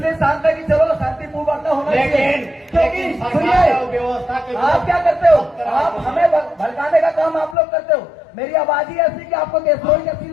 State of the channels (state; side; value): drops out; right; at 7.6 s